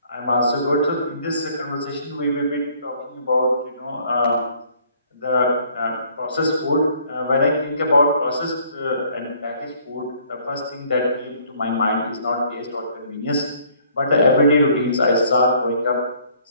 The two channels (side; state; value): both; inverted; correlation -0.61